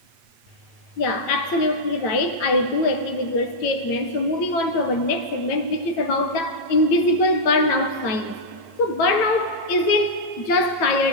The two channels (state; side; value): late; right; 9.0 ms